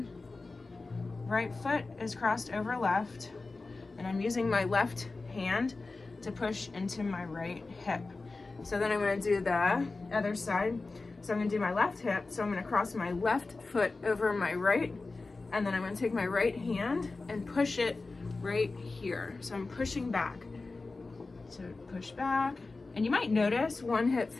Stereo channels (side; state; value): right; quieter; 3.6 dB